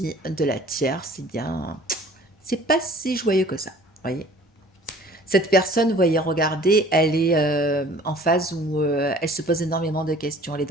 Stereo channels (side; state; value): both; normal; correlation 0.50